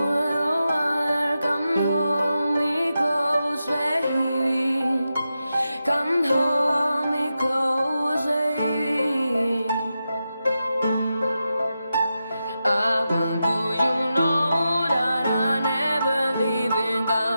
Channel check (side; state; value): both; inverted; correlation -0.90